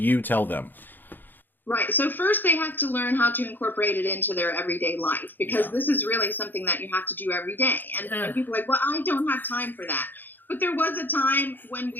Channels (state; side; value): late; right; 0.090 ms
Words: tell them? Right. So first they have to learn how to incorporate it into their everyday life, because this is really something that you have to do every day. And people are like, well, I don't have time for that. But there was a time when